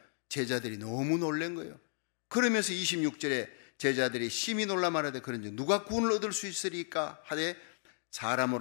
제자들이 너무 놀란 거예요. 그러면서 26절에 제자들이 심히 놀라 말하되 그런지 누가 구원을 얻을 수 있으리까 하되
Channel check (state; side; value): silent; right; 55 dB below the other